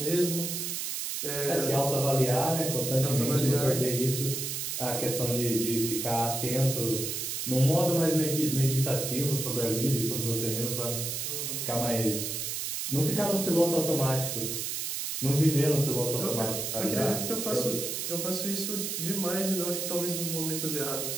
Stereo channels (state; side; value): noise; right; hiss, 3 dB below the sound